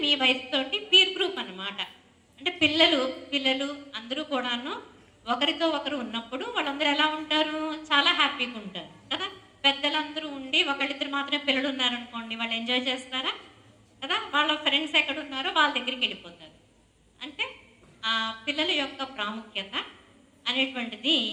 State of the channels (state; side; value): identical; both; correlation 1.00